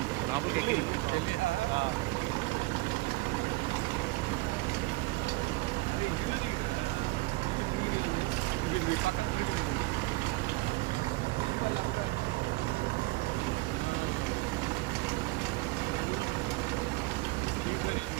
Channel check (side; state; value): left; quieter; 22.6 dB